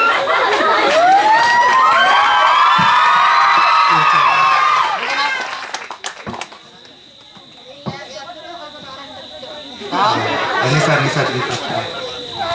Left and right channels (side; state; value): both; identical; correlation 1.00